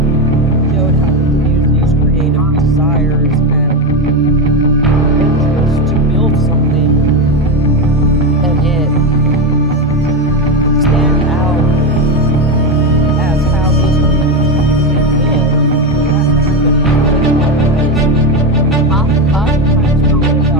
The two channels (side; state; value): both; normal; correlation 0.14